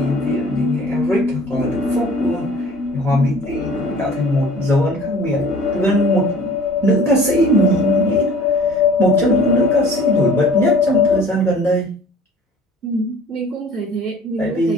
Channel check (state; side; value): normal; both; correlation 0.47